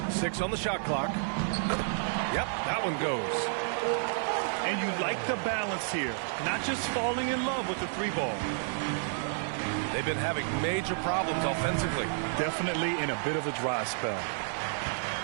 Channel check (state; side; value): silent; left; digital silence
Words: 6 on the shot clock. Yep, that one goes. And you like the balance here. Not just falling in love with the three ball. They've been having major problems offensively. Definitely in a bit of a dry spell.